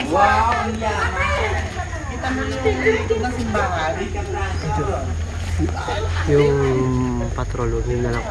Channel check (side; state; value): both; identical; correlation 1.00